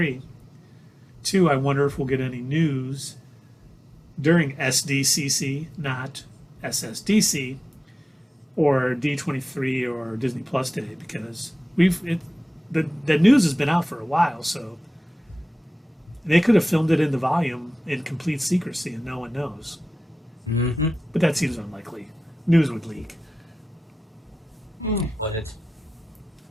Two, I wonder if we'll get any news during SDCC, not SSDC, or D23 or Disney Plus Day, because the news has been out for a while, so they could have filmed it in the volume in complete secrecy and no one knows. Mm-hmm. But that seems unlikely. News would leak. Would it?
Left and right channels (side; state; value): both; normal; correlation 0.95